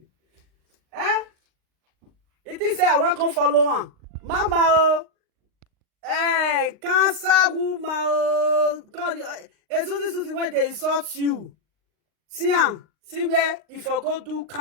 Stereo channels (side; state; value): left; late; 39 ms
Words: Eh? It is say I want to follow on. Mama, oh. Hey, cancer woman, oh. Suzy, when they insult you. See where if I go do